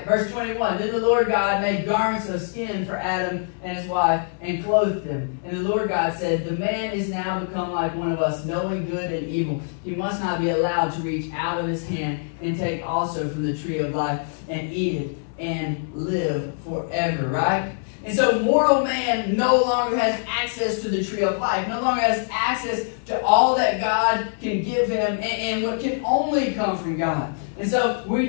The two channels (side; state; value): right; silent; digital silence